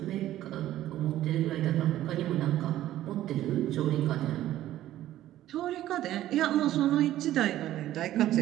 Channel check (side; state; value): left; quieter; 13.6 dB